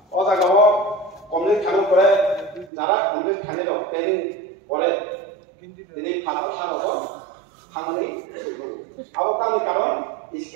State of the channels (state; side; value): drops out; left; at 2.7 s